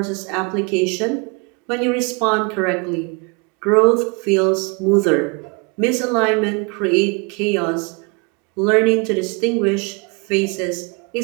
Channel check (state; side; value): quieter; left; 31.2 dB